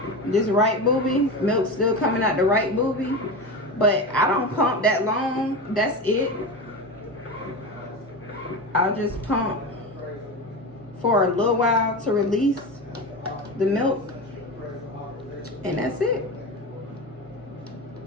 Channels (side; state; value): both; normal; correlation 0.23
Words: This right booby, milk's still coming out the right booby, but I don't pump that long. That's it. I'll just pump for a little while to release the milk, and that's it.